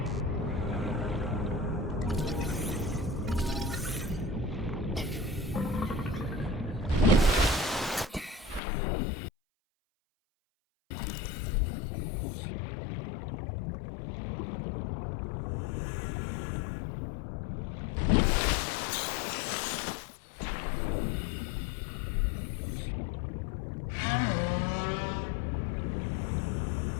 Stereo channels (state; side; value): drops out; right; at 8.6 s